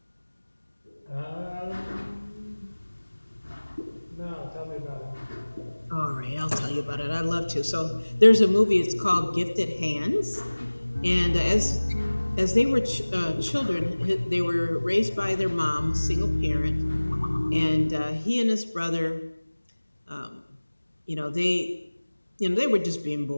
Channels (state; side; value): inverted; both; correlation -1.00